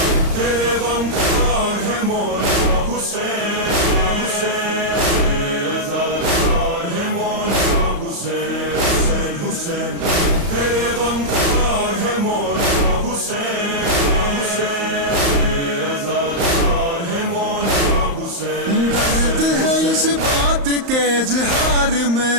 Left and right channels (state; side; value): late; left; 35 ms